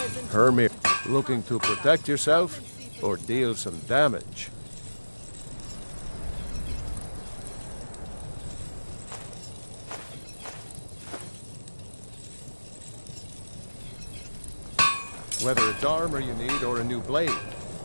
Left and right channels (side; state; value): both; inverted; correlation -1.00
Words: Hermit, looking to protect yourself or deal some damage? Whether it's armor you need or a new blade,